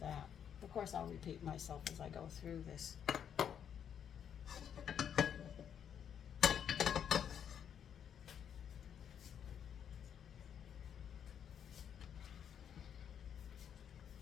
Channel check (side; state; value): right; quieter; 8.5 dB